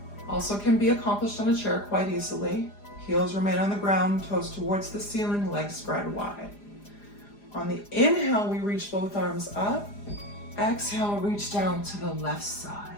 Also can be accomplished on a chair quite easily. Heels remain on the ground, toes towards the ceiling, legs spread wide. On the inhale, we reach both arms up. Exhale, reach down to the left side.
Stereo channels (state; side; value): late; right; 4.9 ms